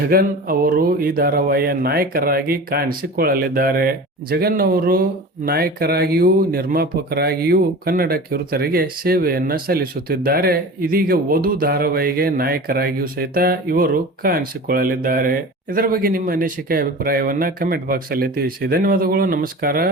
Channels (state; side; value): normal; both; correlation 0.35